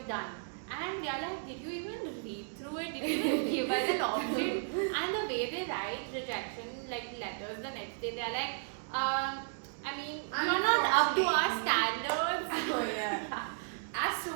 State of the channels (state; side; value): silent; left; digital silence